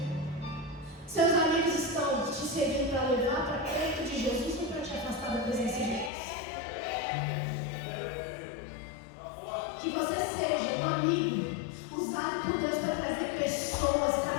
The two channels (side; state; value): right; drops out; at 6.1 s